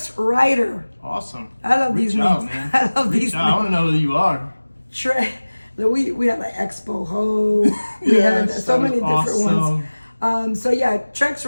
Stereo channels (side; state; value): both; inverted; correlation -1.00